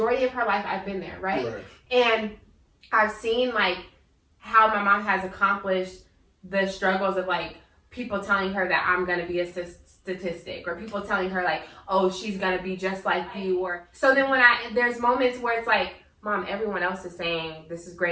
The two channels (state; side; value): identical; both; correlation 1.00